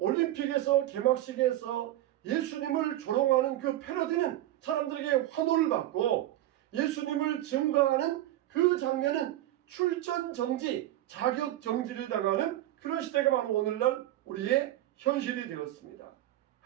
개막식에서 예수님을 조롱하는 그 패러디는 사람들에게 환호를 받고, 예수님을 증거하는 그 장면은 출전 정지, 자격 정지를 당하는 그런 시대가 바로 오늘날 우리의 현실이 되었습니다.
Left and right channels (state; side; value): quieter; left; 14.4 dB